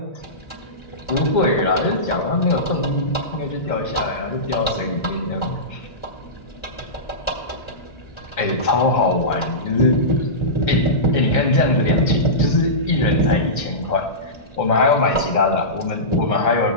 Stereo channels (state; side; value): late; right; 2.1 ms